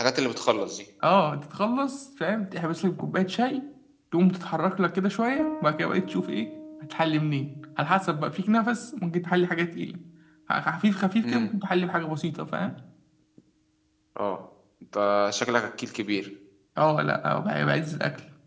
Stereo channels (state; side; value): identical; both; correlation 1.00